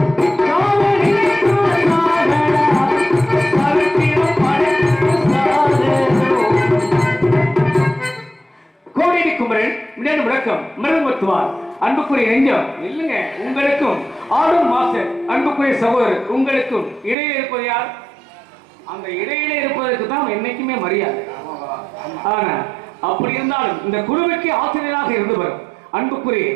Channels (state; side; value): drops out; left; at 17.2 s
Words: சாக நினைத்தால் சாகடா, சரித்திரம் படைத்திட்டு சாகணும். கோடி குமரன் மின்னணு முழக்கம் மிருகமத்துவார் அன்புக்குரிய நெஞ்சம் இல்லைங்க. உங்களுக்கும் ஆடும் மாஸ்டர் அன்புக்குரிய சகோதரர் உங்களுக்கும் இடையில இருப்பது யார்? அந்த இடையில இருப்பதற்கு தான் என்னைக்குமே மரியாதை. ஆனா அப்படி இருந்தாலும் இந்த குழுவுக்கு ஆசிரியராக இருந்து வரும் அன்புக்குரிய